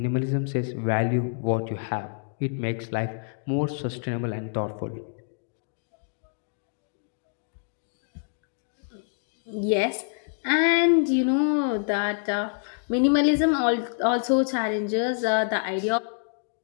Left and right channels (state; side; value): silent; right; 60 dB below the other